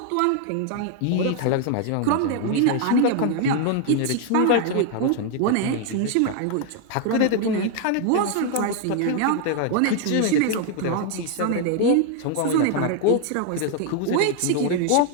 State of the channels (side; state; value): both; different; correlation 0.00